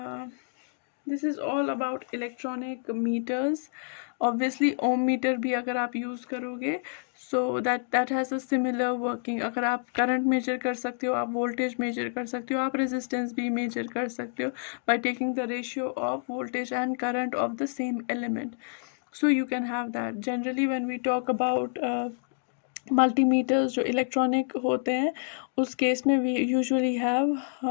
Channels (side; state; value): right; silent; digital silence